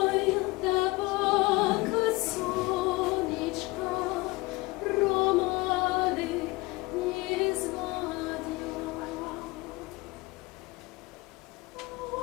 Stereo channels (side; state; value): right; quieter; 22.3 dB